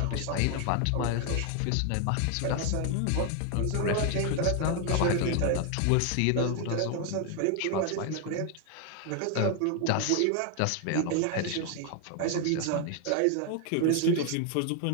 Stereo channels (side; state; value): both; different; correlation 0.00